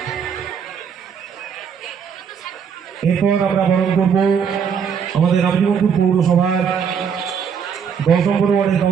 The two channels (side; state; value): left; quieter; 7.0 dB